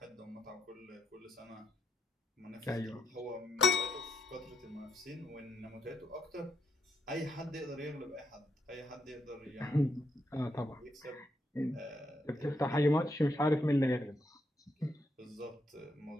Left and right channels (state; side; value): normal; both; correlation 0.78